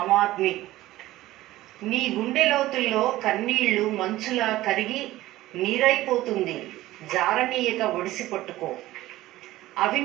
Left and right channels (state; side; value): quieter; left; 16.4 dB